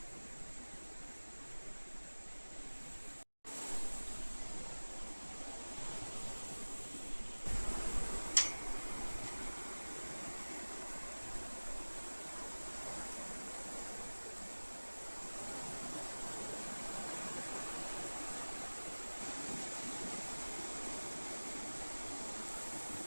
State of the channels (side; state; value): both; inverted; correlation -1.00